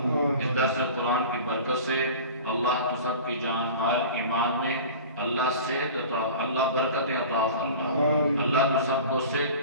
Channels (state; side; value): inverted; both; correlation -0.38